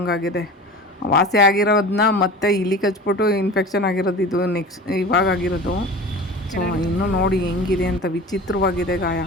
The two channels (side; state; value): both; normal; correlation 0.35